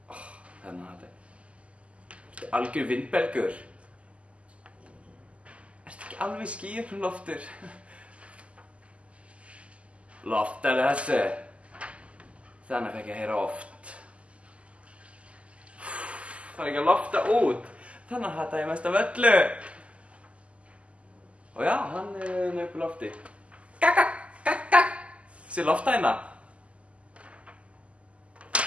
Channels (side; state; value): left; late; 0.060 ms